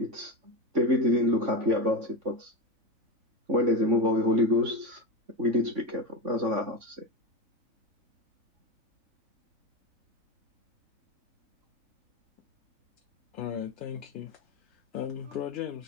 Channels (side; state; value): left; late; 3.5 ms